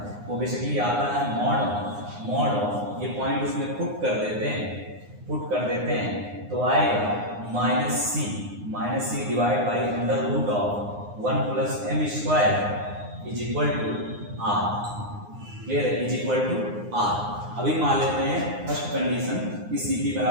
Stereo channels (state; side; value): late; left; 9.7 ms